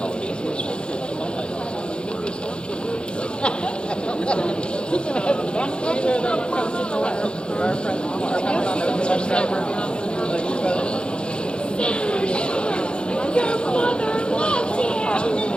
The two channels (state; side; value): late; right; 0.054 ms